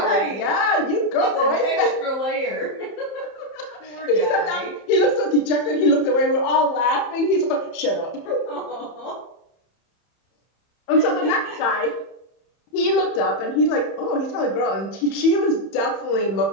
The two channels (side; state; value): right; late; 31 ms